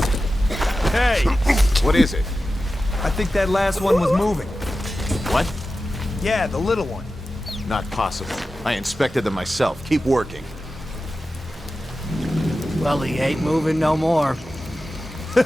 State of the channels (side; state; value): both; normal; correlation 0.93